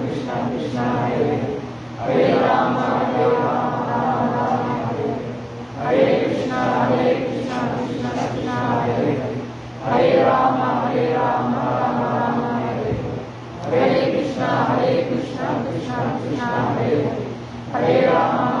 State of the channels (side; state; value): both; identical; correlation 1.00